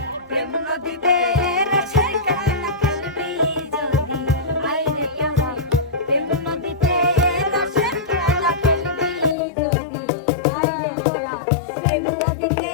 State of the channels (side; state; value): right; drops out; at 9.3 s